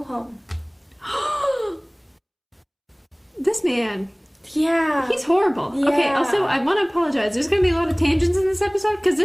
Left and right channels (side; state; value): both; identical; correlation 1.00